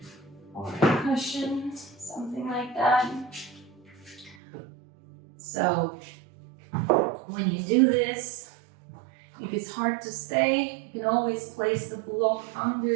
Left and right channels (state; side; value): drops out; left; at 4.4 s